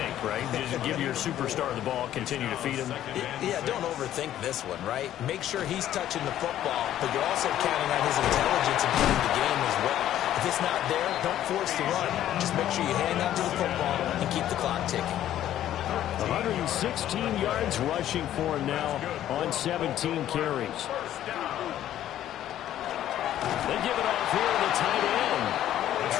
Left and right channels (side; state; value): right; quieter; 12.1 dB